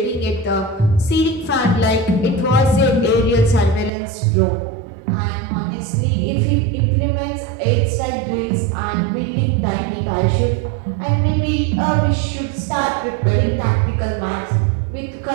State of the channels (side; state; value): left; drops out; at 3.9 s